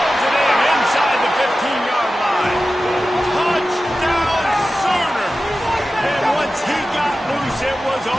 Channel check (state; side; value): normal; both; correlation 0.94